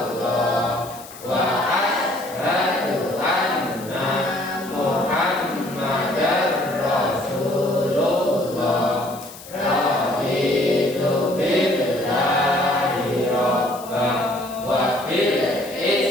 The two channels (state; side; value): noise; left; hiss, 17 dB below the sound